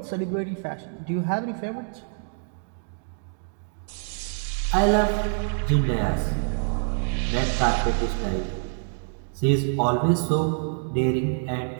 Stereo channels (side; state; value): left; silent; 61 dB below the other